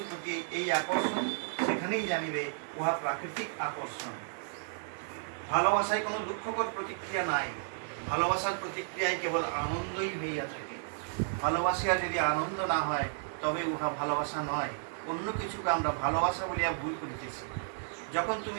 প্রতি এই আকর্ষণ, সেখানেই জানিবে উহা প্রাকৃতিক আকর্ষণ। ভালোবাসায় কোনো দুঃখকর প্রতিক্রিয়া নাই, ভালোবাসার প্রতিক্রিয়ায় কেবল আনন্দই হইয়া থাকে। ভালোবাসিয়া যদি আনন্দ না হয় তবে উহা ভালোবাসা নয়, অন্য কিছুকে আমরা ভালোবাসা বলিয়া ভুল করিতেছি। যখন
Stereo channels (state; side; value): silent; left; 56 dB below the other